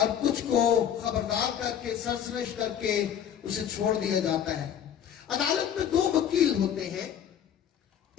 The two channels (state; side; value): quieter; right; 9.3 dB